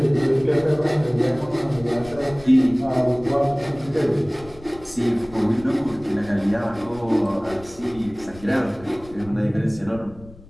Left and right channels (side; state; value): left; noise; rumble, 20 dB below the sound